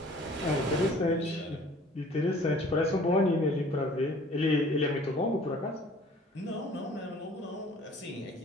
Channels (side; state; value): both; normal; correlation 0.51